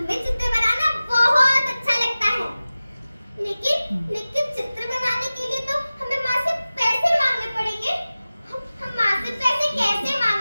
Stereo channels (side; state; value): both; inverted; correlation -0.97